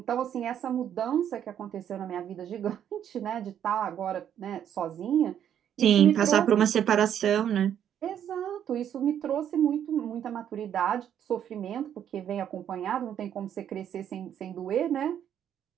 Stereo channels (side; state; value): left; quieter; 9.7 dB